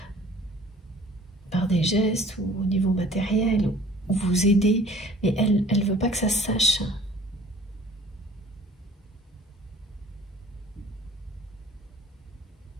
par des gestes ou au niveau matériel, ou vous aider, mais elle ne veut pas que ça se sache.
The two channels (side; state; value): both; normal; correlation 0.51